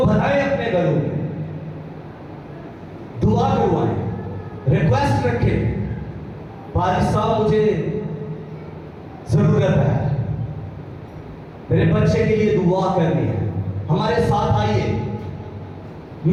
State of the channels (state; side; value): identical; both; correlation 1.00